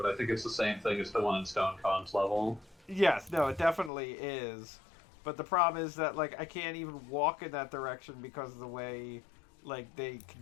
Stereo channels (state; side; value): drops out; right; at 3.9 s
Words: I think it's the same thing as the one in Stone Kong's level. Yes, no, it definitely is. But the problem is that like I can't even walk in that direction because of the way like the